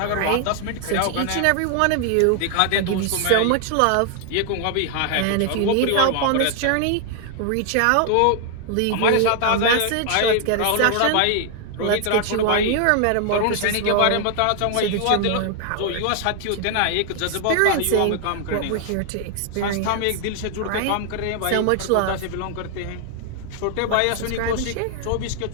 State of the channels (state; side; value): different; both; correlation 0.00